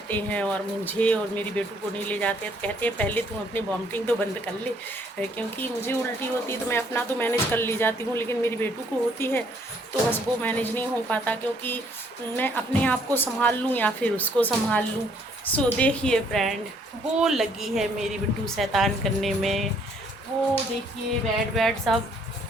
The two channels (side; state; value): both; normal; correlation 0.65